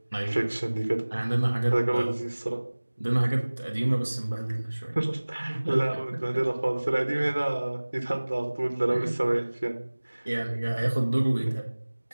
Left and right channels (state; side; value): inverted; both; correlation -1.00